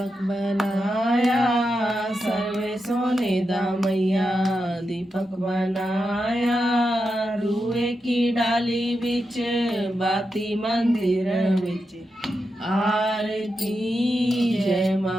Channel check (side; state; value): both; normal; correlation 0.88